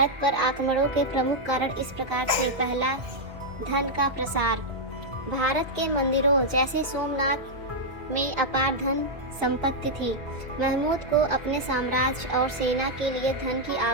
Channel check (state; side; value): late; left; 1.4 ms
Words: पर आक्रमणों के प्रमुख कारण इस प्रकार थे। पहला, धन का प्रसार। भारत के मंदिरों जैसे सोमनाथ में अपार धन संपत्ति थी। महमूद को अपने साम्राज्य और सेना के लिए धन की